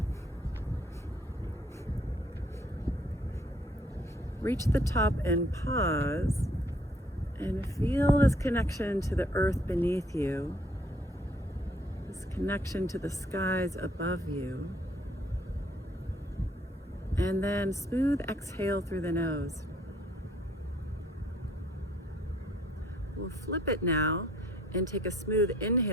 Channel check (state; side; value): normal; both; correlation 0.63